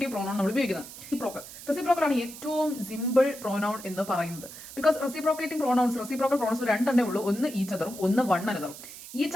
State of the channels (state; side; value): noise; right; hiss, 14 dB below the sound